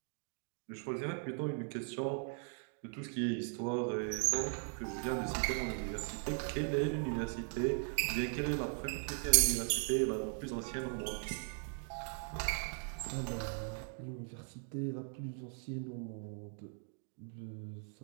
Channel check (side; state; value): left; silent; 52 dB below the other